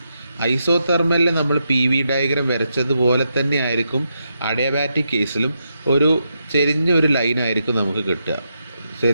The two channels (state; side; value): inverted; both; correlation -0.83